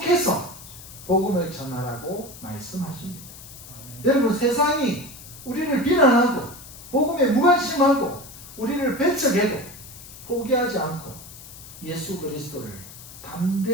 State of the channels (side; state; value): left; noise; hiss, 16 dB below the sound